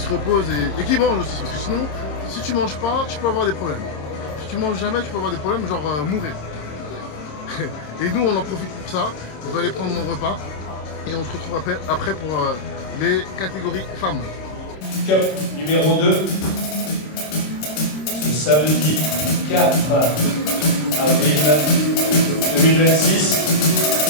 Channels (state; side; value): late; right; 26 ms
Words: reposent et qu'ils mangent aussi. Parce que sinon, si tu manges pas, tu peux avoir des problèmes. Si tu manges jamais, tu peux avoir des problèmes, genre mourir. Et nous, on en profite pour ça. On va aller prendre mon repas et on se retrouve après pour les catégories femmes. Cup numéro 2, ce samedi 4 avril 2026.